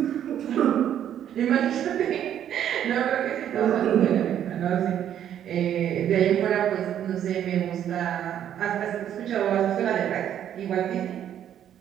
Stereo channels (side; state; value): left; quieter; 10.2 dB